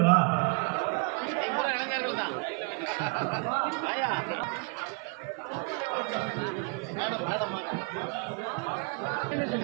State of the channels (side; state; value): left; quieter; 33.3 dB